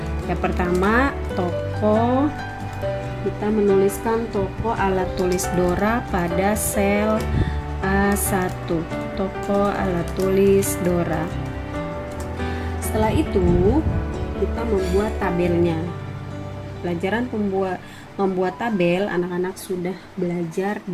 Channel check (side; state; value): both; identical; correlation 1.00